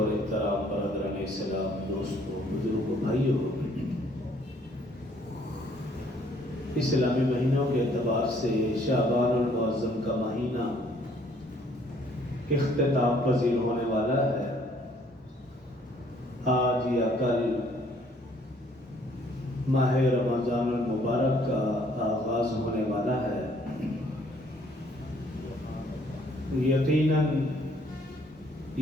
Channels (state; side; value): normal; both; correlation 0.62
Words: احترام برادران اسلام، دوستوں، بزرگوں، بھائیوں، اسلامی مہینوں کے اعتبار سے شعبان المعظم کا مہینہ اختتام پذیر ہونے والا ہے۔ آج یا کل ماہ رمضان المبارک کا آغاز ہونے والا ہے۔ یقیناً